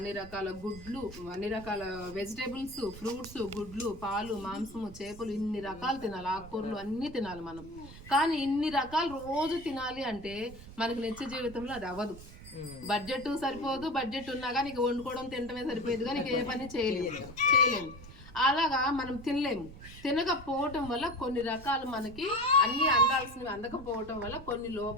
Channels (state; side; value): noise; right; rumble, 16 dB below the sound